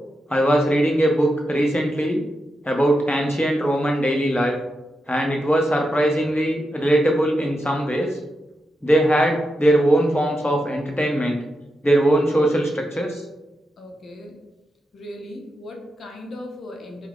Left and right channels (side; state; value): both; normal; correlation 0.87